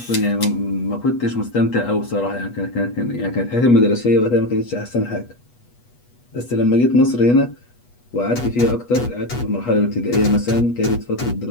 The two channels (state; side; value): late; right; 8.2 ms